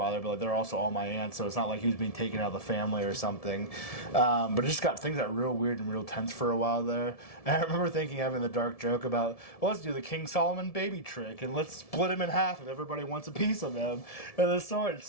but like, they're also all my aunts, so it's not like he was being taken out of the family or something. But it just things got real weird and real tense for a while there. And I remember having the dark joke about, well, let's do the King Solomon baby trick, and let's split him in half if everybody wants a piece of him. And the sword,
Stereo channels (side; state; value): right; late; 1.7 ms